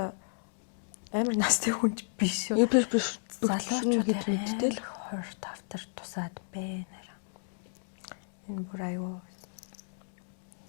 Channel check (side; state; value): right; silent; digital silence